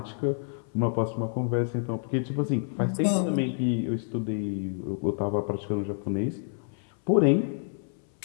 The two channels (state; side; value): silent; right; 59 dB below the other